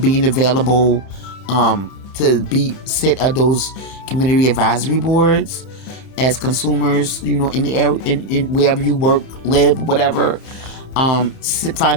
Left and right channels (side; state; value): right; late; 30 ms